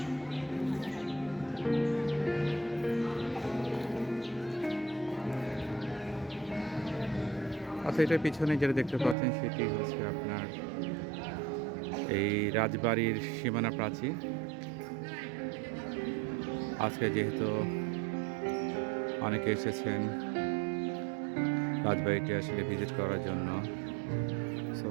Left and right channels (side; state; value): left; drops out; at 9.2 s